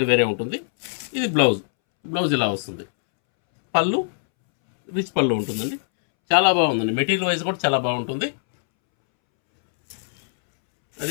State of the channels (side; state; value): right; silent; 64 dB below the other